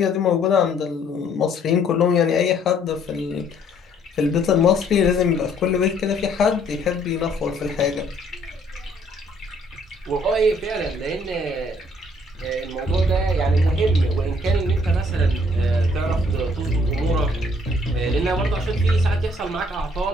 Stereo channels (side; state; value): both; normal; correlation 0.63